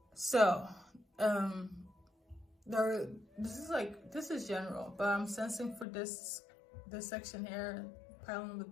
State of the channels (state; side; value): drops out; right; at 5.9 s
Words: So, this is general, but I'm sensing for this section here, pile number